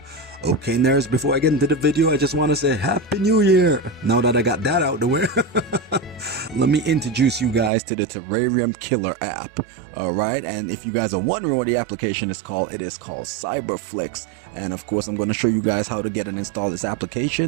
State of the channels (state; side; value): drops out; left; at 7.7 s